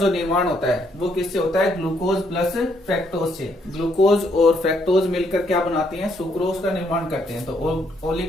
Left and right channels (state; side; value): normal; both; correlation 0.72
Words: निर्माण होता है वो किससे होता है? ग्लूकोज प्लस फ्रक्टोज से। ग्लूकोज और फ्रक्टोज मिलकर क्या बनाते हैं? सुक्रोज का निर्माण करते हैं। तो